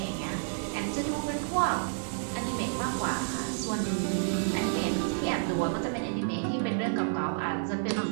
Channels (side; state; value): left; silent; digital silence